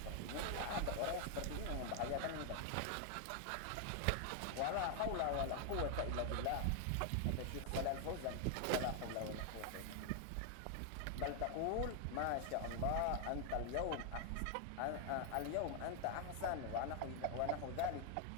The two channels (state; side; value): different; both; correlation 0.00